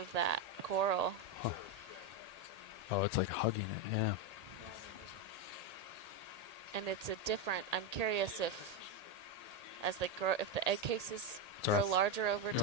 that coral. Huh. Oh, it's like hugging it, yeah. And it's a different... I'm curious if, as they grow, if the egg cases grow larger over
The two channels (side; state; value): left; late; 1.8 ms